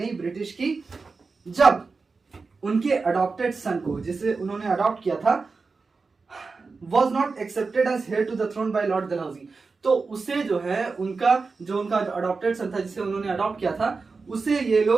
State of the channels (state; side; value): quieter; left; 4.4 dB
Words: ब्रिटिश की, जब उनके अडॉप्टेड सन को, जिसे उन्होंने अडॉप्ट किया था, was not accepted as heir to the throne by Lord Dalhousie. तो उसे जो है उनका अडॉप्टेड सन था, जिसे उन्होंने अडॉप्ट किया था, उसे ये